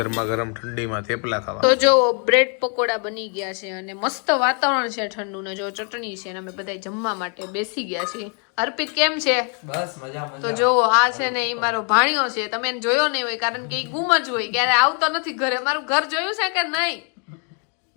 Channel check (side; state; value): right; quieter; 39.5 dB